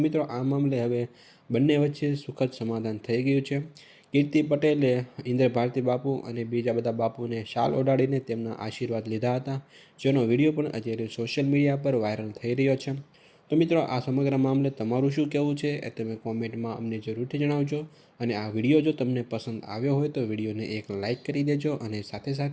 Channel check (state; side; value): identical; both; correlation 1.00